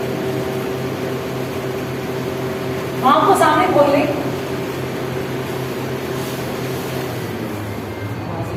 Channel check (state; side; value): identical; both; correlation 1.00